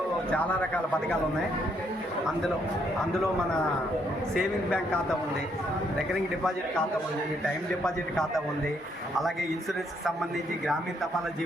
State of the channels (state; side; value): normal; both; correlation 0.72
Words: చాలా రకాల పథకాలు ఉన్నాయి. అందులో మన సేవింగ్ బ్యాంక్ ఖాతా ఉంది, రికరింగ్ డిపాజిట్ ఖాతా ఉంది, టైం డిపాజిట్ ఖాతా ఉంది, అలాగే ఇన్సూరెన్స్కి సంబంధించి గ్రామీణ తపాలా